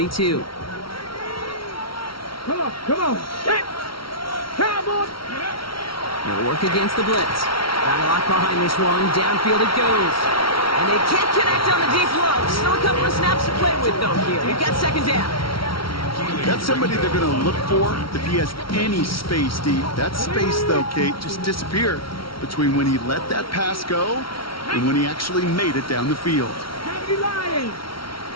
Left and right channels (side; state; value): right; late; 0.74 ms